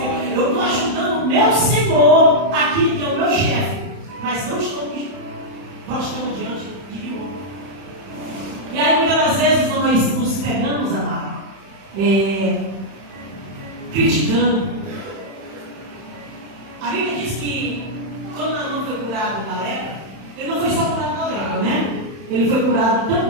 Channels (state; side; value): late; left; 31 ms